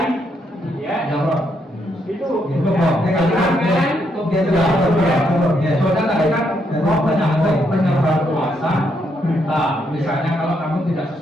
ya. Itu penyebar kuasa. Nah, misalnya kalau kamu tidak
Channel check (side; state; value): both; normal; correlation 0.76